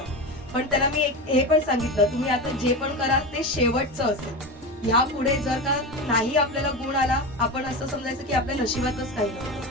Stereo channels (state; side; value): normal; both; correlation 0.22